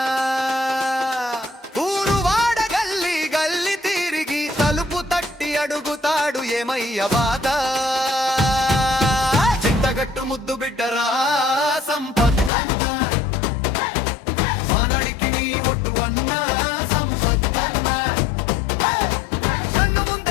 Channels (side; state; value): right; drops out; at 12.5 s